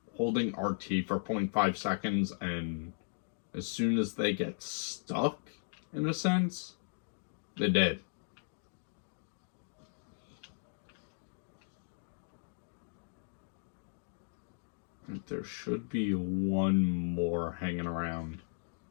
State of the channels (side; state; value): right; silent; digital silence